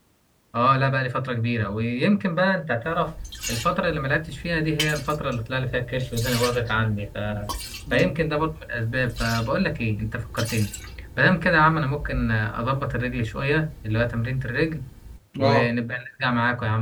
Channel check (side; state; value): both; identical; correlation 1.00